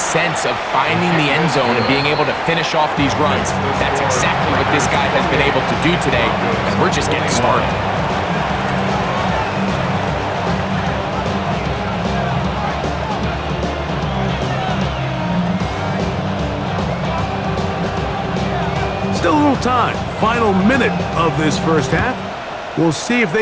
of finding the end zone and being able to finish off these runs. That's exactly what this guy has been able to do today, and we're just getting started. Still a little time. Final minute of this first half. We'll see if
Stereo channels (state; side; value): identical; both; correlation 1.00